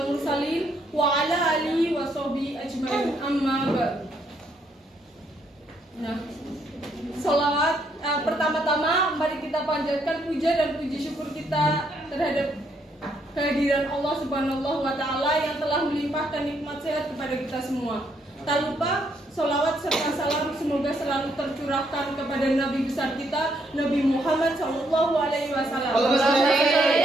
mursalin wa ala alihi washabihi ajmain, amma ba'du. Nah, sholawat pertama-tama mari kita panjatkan puja dan puji syukur kita terhadap kehadiran Allah Subhanahu wa Ta'ala yang telah melimpahkan nikmat sehat kepada kita semua. Tak lupa sholawat serta salam semoga selalu tercurahkan kepada Nabi besar kita, Nabi Muhammad Sallallahu Alaihi Wasallam,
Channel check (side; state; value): both; normal; correlation 0.73